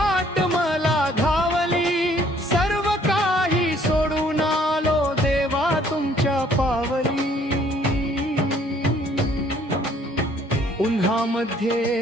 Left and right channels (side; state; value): both; normal; correlation 0.61